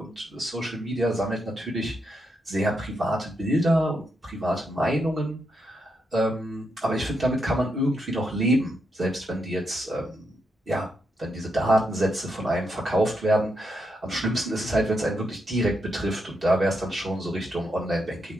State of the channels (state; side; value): normal; both; correlation 0.82